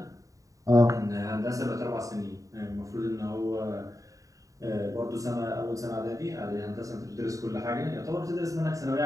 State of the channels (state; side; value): late; left; 0.16 ms